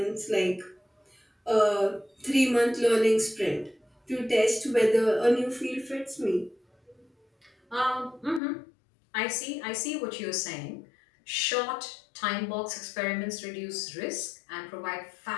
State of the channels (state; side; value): drops out; right; at 8.4 s